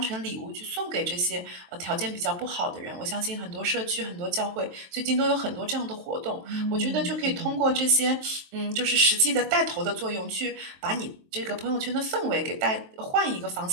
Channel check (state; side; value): late; left; 23 ms